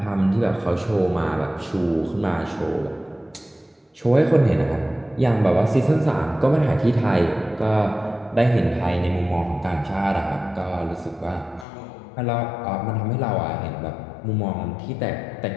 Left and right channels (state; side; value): drops out; right; at 11.7 s